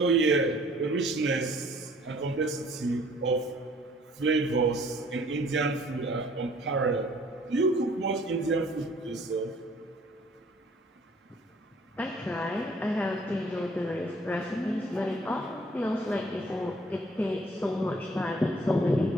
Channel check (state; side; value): normal; both; correlation 0.57